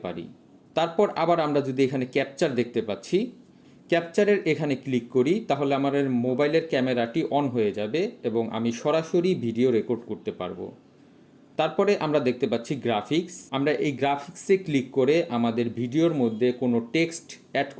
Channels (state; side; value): identical; both; correlation 1.00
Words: পারি। তারপর আবার আমরা যদি এখানে ক্যাপচার দেখতে পাচ্ছি, ক্যাপচারের এখানে ক্লিক করি তাহলে আমার মোবাইলের ক্যামেরাটি অন হয়ে যাবে এবং আমি সরাসরি ভিডিও রেকর্ড করতে পারবো। তারপরে আমরা দেখতে পাচ্ছি গ্রাফিক্স। আমরা এই গ্রাফিক্সে ক্লিক করে আমাদের ভিডিওর মধ্যে কোনো টেক্সট অ্যাড